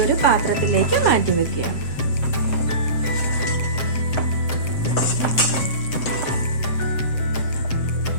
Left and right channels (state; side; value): late; right; 7.6 ms